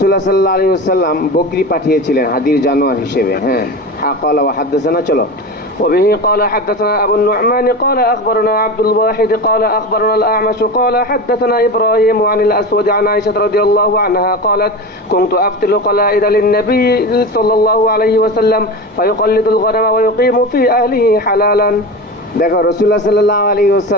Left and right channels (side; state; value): both; normal; correlation 0.27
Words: সাল্লাল্লাহু আলাইহি ওয়াসাল্লাম বকরি পাঠিয়েছিলেন হাদির জানোয়ার হিসেবে। হ্যাঁ قال وحدثنا। চলো। وبه قال حدثنا أبو النعمان قال أخبرنا عبد الواحد قال أخبرنا الأعمش قال حدثنا إبراهيم عن الأسود عن عائشة رضي الله عنها قالت كنت أفتل قلائد للنبي صلى الله عليه وسلم فيقلد الغنم ويقيم في أهله حلالا। দেখো রাসূলুল্লাহ সাল্লাল্লাহু আলাইহি